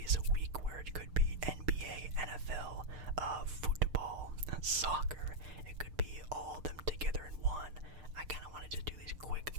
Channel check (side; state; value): left; late; 6.6 ms